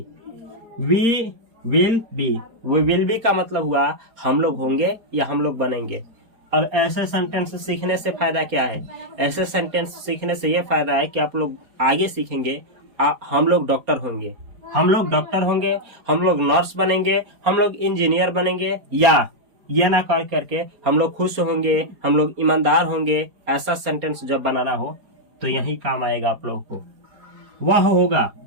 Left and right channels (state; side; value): late; left; 4.3 ms